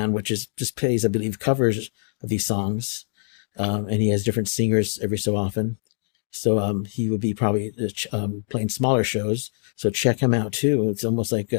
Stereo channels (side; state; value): right; silent; digital silence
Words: which is just plays, I believe, covers of these songs, and he has different singers every so often. So he would be probably playing smaller shows. So check him out too. It's almost like